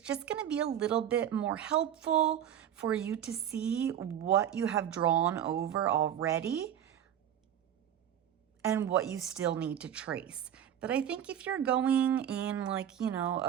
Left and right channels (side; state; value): left; quieter; 10.0 dB